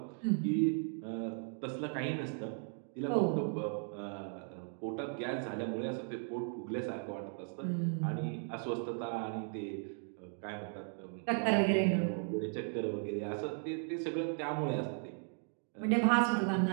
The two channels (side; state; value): left; silent; 53 dB below the other